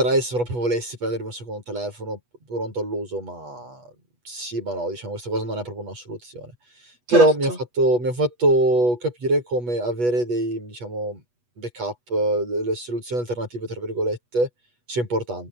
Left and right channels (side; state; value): left; late; 8.2 ms